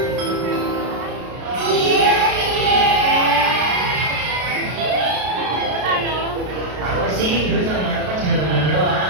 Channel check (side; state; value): left; late; 33 ms